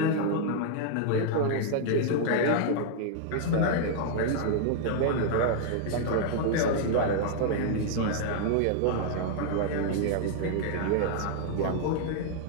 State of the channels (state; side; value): different; both; correlation -0.01